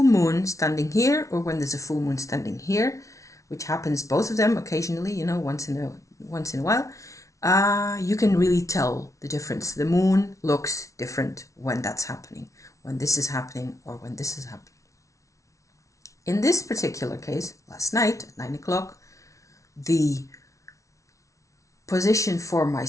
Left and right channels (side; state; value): right; late; 0.15 ms